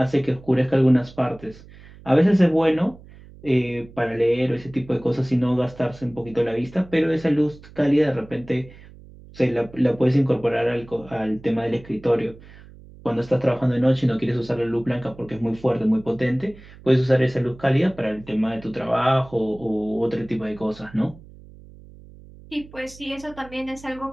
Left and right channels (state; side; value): noise; right; hum, 21 dB below the sound